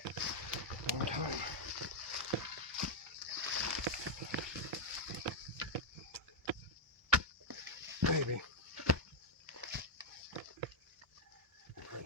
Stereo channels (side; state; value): both; normal; correlation -0.01